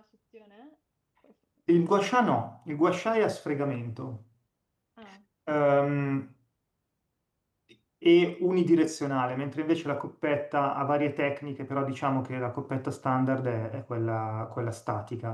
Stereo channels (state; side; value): identical; both; correlation 1.00